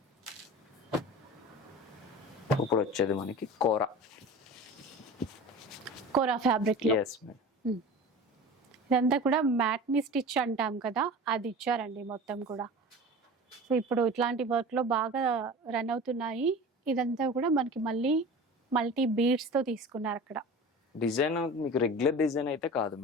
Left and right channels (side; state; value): both; normal; correlation 0.36